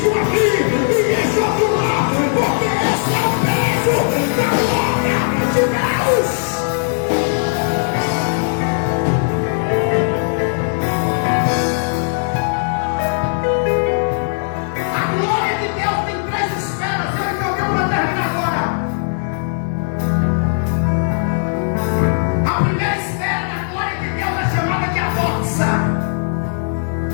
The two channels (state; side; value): silent; right; 67 dB below the other